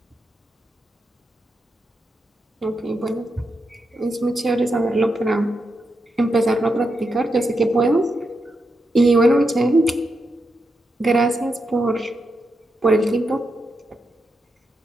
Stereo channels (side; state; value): both; normal; correlation 0.85